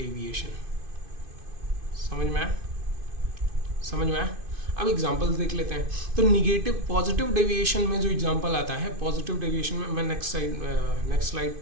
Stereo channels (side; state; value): left; late; 2.5 ms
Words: समझ में आया, समझ में आया। अब एग्जांपल्स देख लेते हैं। तो निगेटिव, पॉजिटिव डेविएशन में जो एग्जांपल आता है, पॉजिटिव डेविएशन में मैं नेक्स्ट स्लाइड